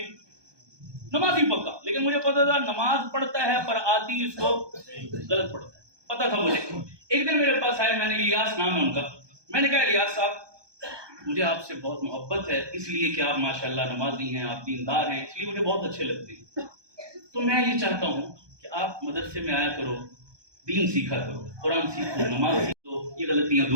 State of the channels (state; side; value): late; left; 1.2 ms